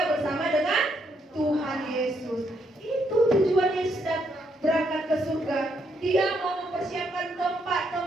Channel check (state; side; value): normal; both; correlation 0.75